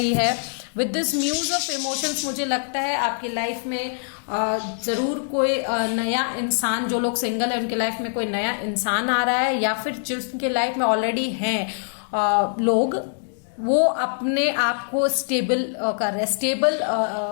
है। With this muse of emotions मुझे लगता है आपकी लाइफ में जरूर कोई नया इंसान, जो लोग सिंगल है उनके लाइफ में कोई नया इंसान आ रहा है, या फिर जिनके लाइफ में ऑलरेडी हैं लोग, वो अपने आप को स्टेबल कर रहे हैं,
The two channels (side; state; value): right; silent; digital silence